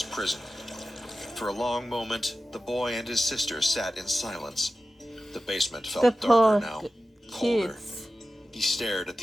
prison. For a long moment, the boy and his sister sat in silence. The basement felt The darker poor now, colder. kids. He stared at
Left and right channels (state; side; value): normal; both; correlation 0.94